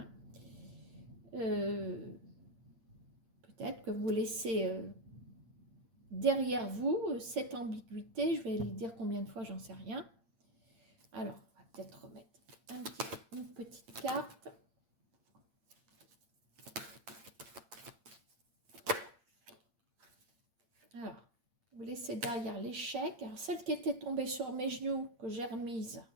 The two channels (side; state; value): left; late; 8.7 ms